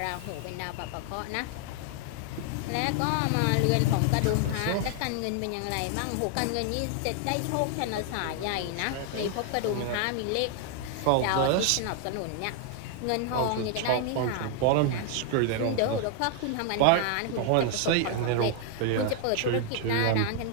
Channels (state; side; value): different; both; correlation 0.00